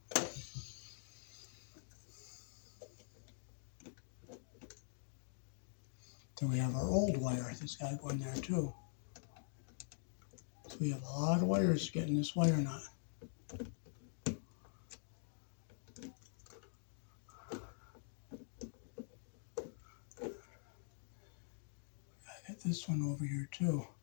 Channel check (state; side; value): silent; right; digital silence